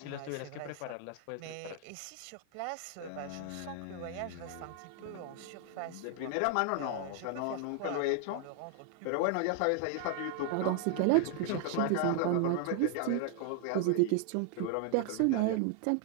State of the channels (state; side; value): different; both; correlation 0.00